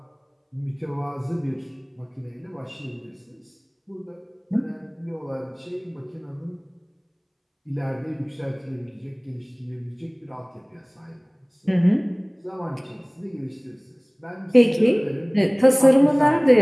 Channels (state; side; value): identical; both; correlation 1.00